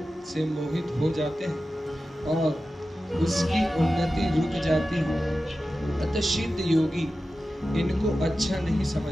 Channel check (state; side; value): normal; both; correlation 0.93